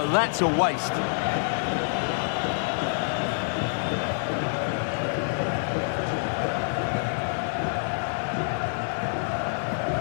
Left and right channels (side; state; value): right; silent; 60 dB below the other